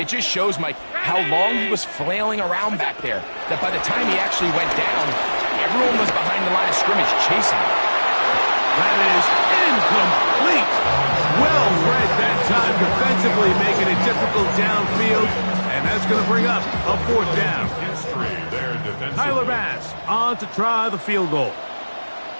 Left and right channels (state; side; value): inverted; both; correlation -1.00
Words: just shows, Mike, how long he was flailing around back there, that by the time he actually went down, everyone was behind the line of scrimmage chasing him. That is incomplete. Well read that time defensively, making it difficult downfield, and that's going to bring up a 4th down. Tyler Bass on to try the field goal.